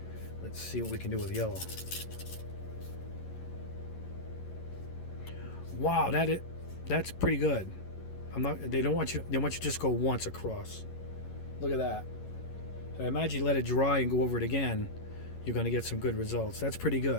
Let's see what we can do with yellow. Wow, that's pretty good. They want you to just go once across. Look at that. I imagine you let it dry and go over it again, you're going to get some good results. That's pretty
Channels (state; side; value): late; right; 11 ms